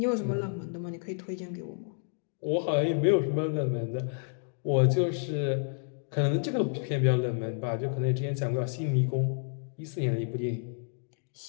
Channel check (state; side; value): silent; right; digital silence